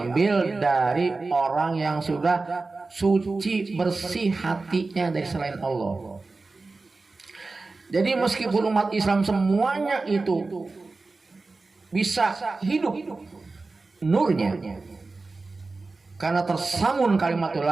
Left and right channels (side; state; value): left; quieter; 3.7 dB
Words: dari orang yang sudah suci bersih hatinya dari selain Allah. Jadi meskipun umat Islam semuanya itu bisa hidup nurnya karena tersamun kalimat